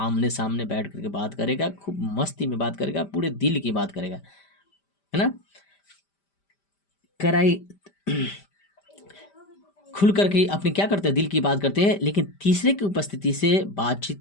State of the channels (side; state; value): right; late; 5.1 ms